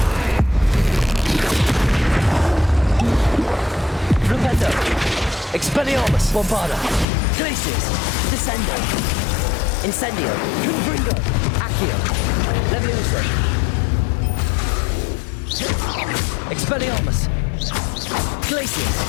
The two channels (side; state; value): right; drops out; at 7.1 s